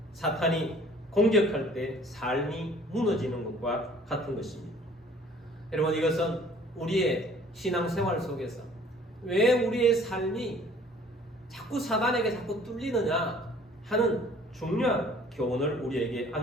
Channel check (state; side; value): normal; both; correlation 0.53